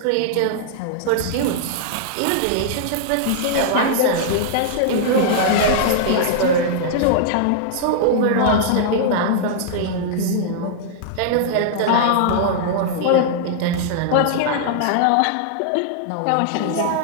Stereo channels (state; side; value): different; both; correlation -0.01